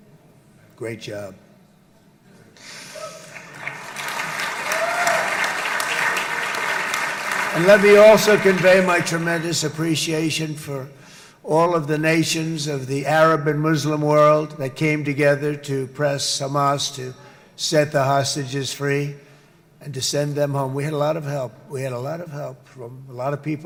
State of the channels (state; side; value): identical; both; correlation 1.00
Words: Great job. And let me also convey my tremendous appreciation for all of the nations of the Arab and Muslim world that came together to press Hamas to set the hostages free and to send them home. We had a lot of help. We had a lot of help from a lot of